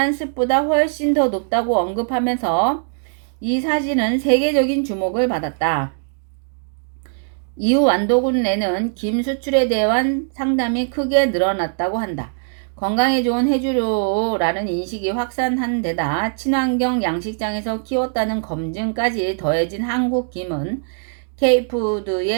습보다 훨씬 더 높다고 언급하면서 이 사진은 세계적인 주목을 받았다. 이후 완도군 내는 김 수출에 대한 상담이 크게 늘어났다고 한다. 건강에 좋은 해조류라는 인식이 확산한 데다 친환경 양식장에서 키웠다는 검증까지 더해진 한국 김은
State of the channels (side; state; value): left; silent; digital silence